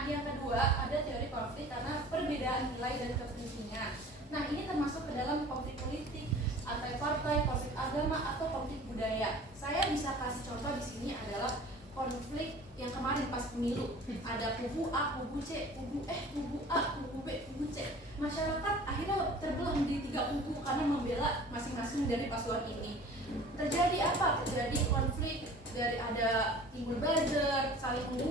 yang kedua ada teori konflik karena perbedaan nilai dan kepentingan. Nah, ini termasuk ke dalam konflik politik, antar partai, konflik agama, atau konflik budaya. Saya bisa kasih contoh di sini adalah konflik yang kemarin pas pemilu. Ada kubu A, kubu C, kubu A, kubu B, kubu C. Masyarakat akhirnya terbelah menjadi 3 kubu karena membela masing-masing dari paslon ini. Terjadi apa? Terjadi konflik, dari ada timbul buzzer, saling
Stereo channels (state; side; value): normal; both; correlation 0.45